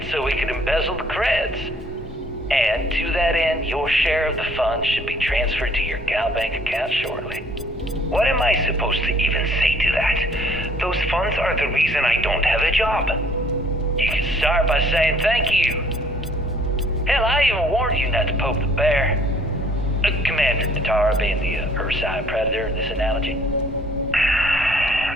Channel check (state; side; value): normal; both; correlation 0.58